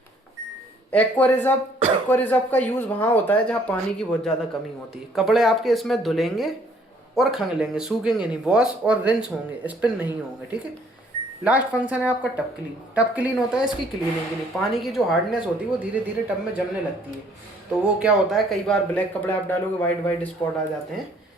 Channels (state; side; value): normal; both; correlation 0.62